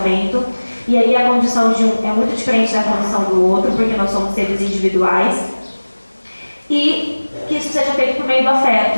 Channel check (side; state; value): both; inverted; correlation -1.00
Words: E aí a condição de um é muito diferente da condição do outro, porque nós somos seres individuais. E que isso seja feito por meio do